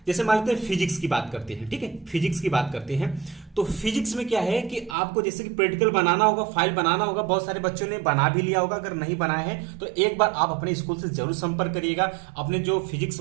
जैसे मान लेते हैं फिजिक्स की बात करते हैं। ठीक है, फिजिक्स की बात करते हैं तो फिजिक्स में क्या है कि आपको जैसे कि प्रैक्टिकल बनाना होगा, फाइल बनाना होगा। बहुत सारे बच्चों ने बना भी लिया होगा, अगर नहीं बनाया है तो एक बार आप अपने स्कूल से जरूर संपर्क करिएगा। अपने जो फिजिक्स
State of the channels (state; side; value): drops out; left; at 5.0 s